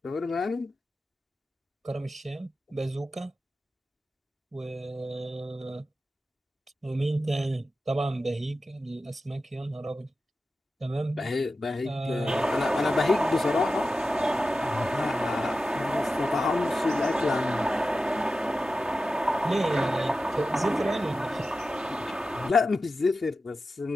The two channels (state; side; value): normal; both; correlation 0.92